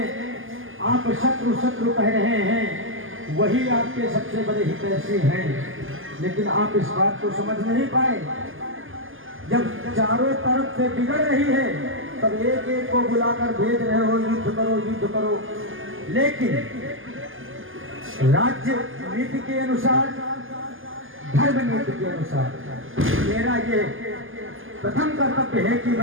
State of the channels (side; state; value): left; late; 0.59 ms